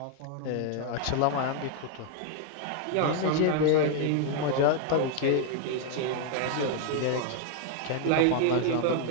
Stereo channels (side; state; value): both; different; correlation 0.00